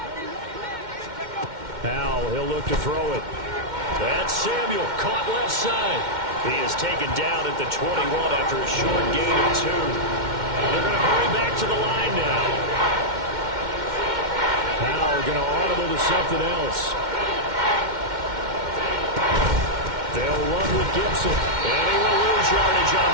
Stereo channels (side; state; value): left; late; 2.1 ms